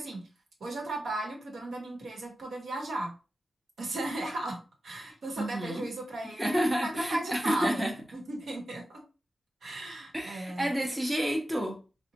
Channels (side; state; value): both; normal; correlation 0.92